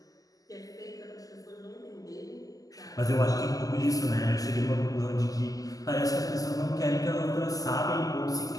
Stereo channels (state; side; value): late; right; 0.17 ms